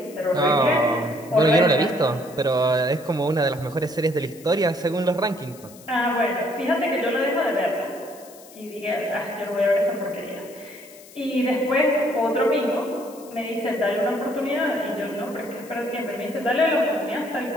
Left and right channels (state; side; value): noise; left; hiss, 21 dB below the sound